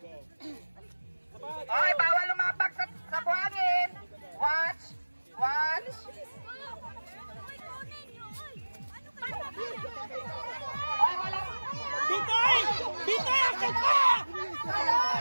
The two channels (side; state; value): both; inverted; correlation -1.00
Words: Okay, bawal lumapak sa buhangin. Watch. Watch. Ay, wala. Bitoy! Bitoy! Akit ka!